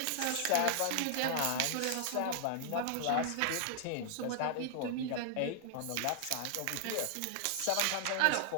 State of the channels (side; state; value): both; different; correlation -0.01